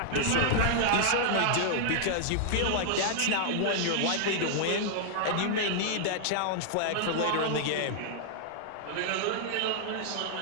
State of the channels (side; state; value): both; different; correlation -0.01